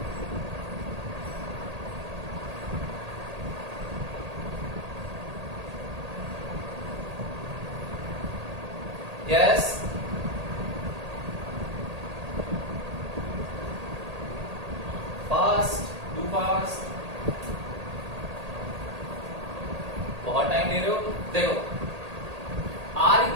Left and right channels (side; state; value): left; late; 1.8 ms